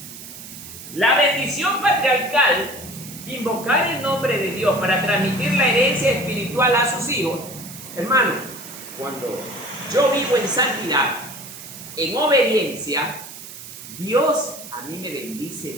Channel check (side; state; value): right; noise; hiss, 14 dB below the sound